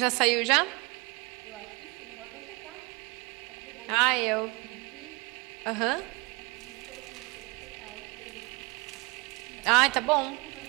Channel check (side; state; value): left; quieter; 26.1 dB